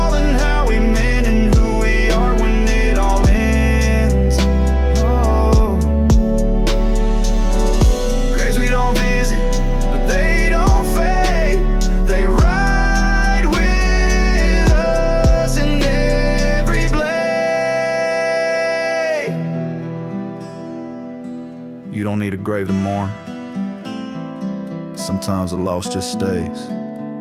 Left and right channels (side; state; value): both; identical; correlation 1.00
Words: and how we mend and who we are when it all ends. Oh. Graves we don't visit, but they don't fade. They ride with us in every blade. You don't need a grave to mourn. Sometimes the loss just stays